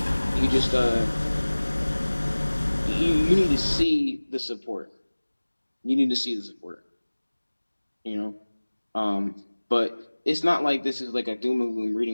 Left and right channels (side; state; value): both; inverted; correlation -1.00